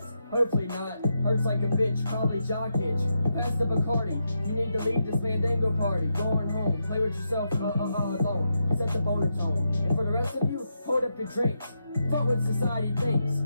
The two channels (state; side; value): inverted; both; correlation -0.84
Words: Hopefully not. Hurts like a bitch. Probably jock itch. Pass the Bacardi. You need to leave this Mandango party. Going home. Play with yourself alone. Set the boner tone. And for the rest of you, hold up your drinks. Fuck what society thinks.